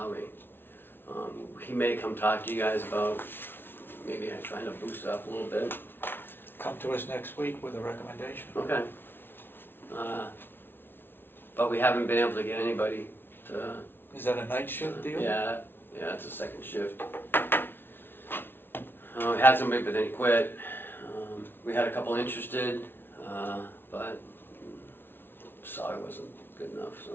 He may come talk to you guys about maybe trying to boost it up a little bit. Come to us next week with a recommendation. Okay. But we haven't been able to get anybody to, Is that a night shift deal? yeah, it's a second shift. We had somebody, but then he quit. We had a couple interested, but salary wasn't good enough,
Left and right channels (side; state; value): right; late; 0.11 ms